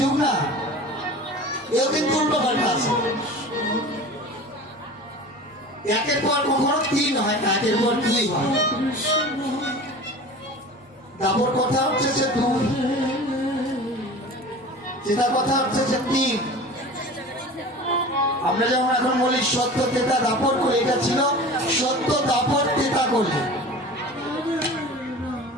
না, এও কিন্তু উল্টো পাল্টা আছে। একের পর কখনো 3 হয় না, একের পর 2 হয়। দ্বাপর কথা হচ্ছে যে 2, ত্রেতা কথা হচ্ছে যে 3। আমরা যেমন এখন বলি সত্য, ত্রেতা, দ্বাপর, কলি, এটা ছিল সত্য, দ্বাপর, ত্রেতা, কলি।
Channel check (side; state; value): both; normal; correlation 0.37